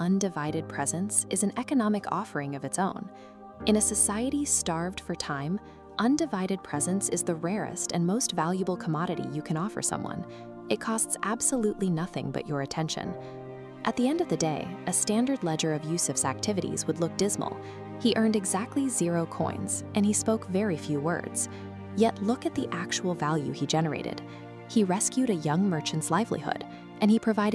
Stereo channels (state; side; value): identical; both; correlation 1.00